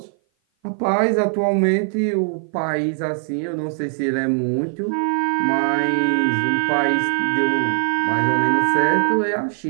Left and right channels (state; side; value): silent; left; 56 dB below the other